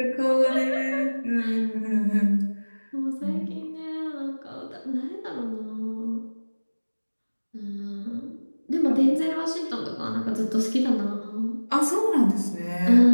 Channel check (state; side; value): inverted; both; correlation -1.00